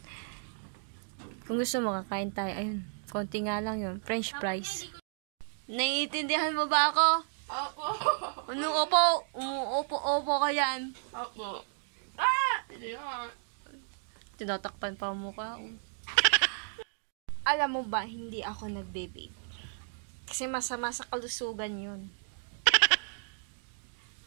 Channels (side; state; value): left; silent; digital silence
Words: Kung gusto mo, kakain tayo. Ayun, konti nga lang yun. French fries. Naiintindihan mo ba ako? Opo. Anong opo? Umuopo-opo ka yan. Opo. Hindi nga. Tinatakpan pa ang mukha. Alam mo ba, hindi ako nagbe-vape. Kasi masama sa kalusugan yun.